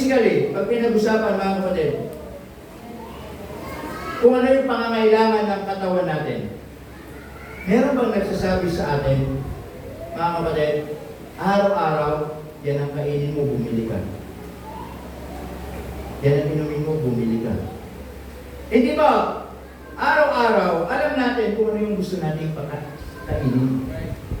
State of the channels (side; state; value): both; identical; correlation 1.00